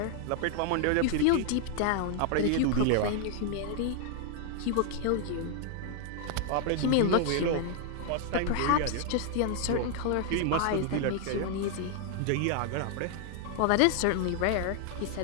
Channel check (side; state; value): both; different; correlation 0.00